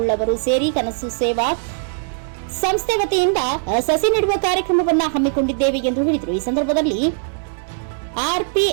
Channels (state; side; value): silent; left; 66 dB below the other